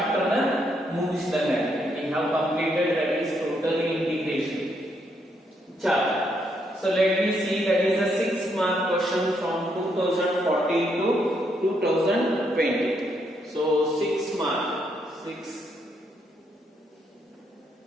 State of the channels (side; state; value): both; normal; correlation 0.76